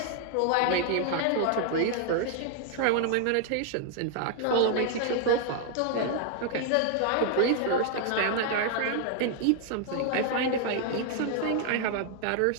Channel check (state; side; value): different; both; correlation 0.00